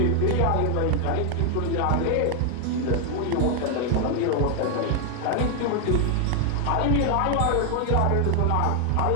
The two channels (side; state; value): both; different; correlation 0.00